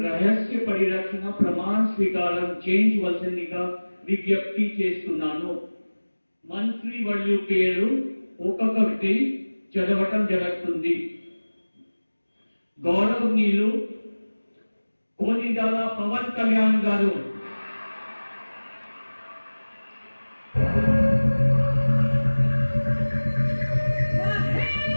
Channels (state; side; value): inverted; both; correlation -1.00